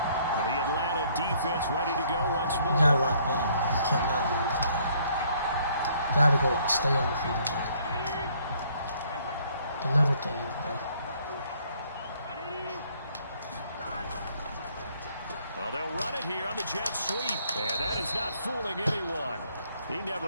The Atlanta defense ready to go once more. You gotta lock in. You cannot lose. You gotta go stay on the field, bro. The little things, bro. Well, they'll run it here on the jet sweep. And that is not fooling anyone. He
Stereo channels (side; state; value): both; inverted; correlation -0.64